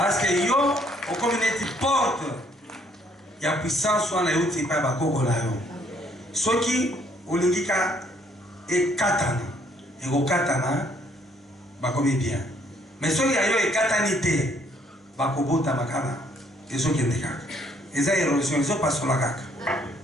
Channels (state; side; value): normal; both; correlation 0.66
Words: que yo, au communauté porte, il y a puissance sur la route, il n'y a pas de ce qui, au lingika, et katana et au katana bakomi bien mais ceux qui ayo et katanité bakobota makana et ceux qui ndeka et ça érosion ils sont pas sur la kaka